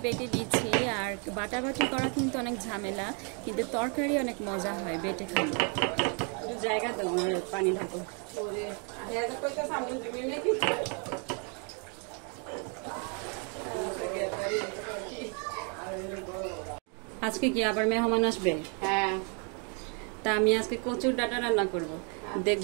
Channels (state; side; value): quieter; left; 37.7 dB